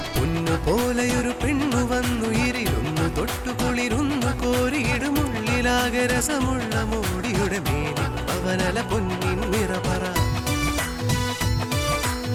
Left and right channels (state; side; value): identical; both; correlation 1.00